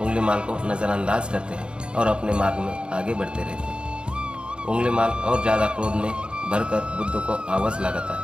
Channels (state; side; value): late; left; 0.054 ms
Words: को नज़रअंदाज करते हैं और अपने मार्ग में आगे बढ़ते रहते हैं। उंगलीमाल और ज़्यादा क्रोध में भरकर बुद्ध को आवाज़ लगाता